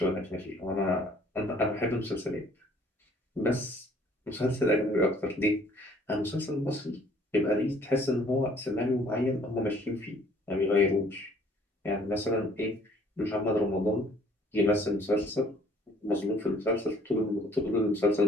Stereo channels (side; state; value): both; normal; correlation 0.58